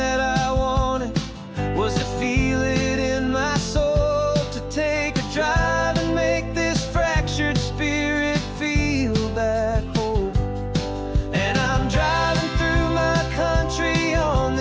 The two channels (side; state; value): both; identical; correlation 1.00